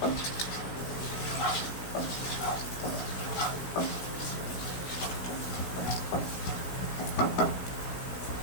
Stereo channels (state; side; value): late; right; 16 ms